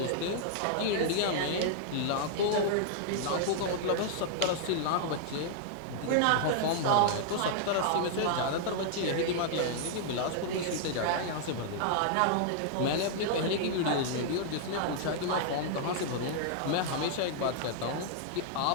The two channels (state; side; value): different; both; correlation -0.01